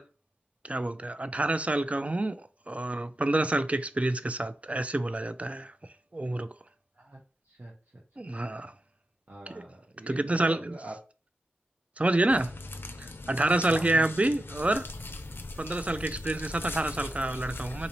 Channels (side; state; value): both; normal; correlation 0.88